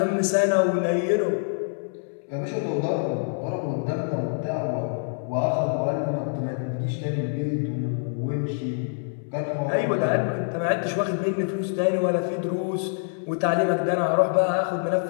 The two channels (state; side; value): silent; right; 61 dB below the other